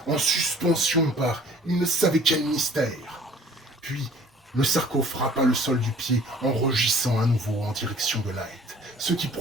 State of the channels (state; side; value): normal; both; correlation 0.52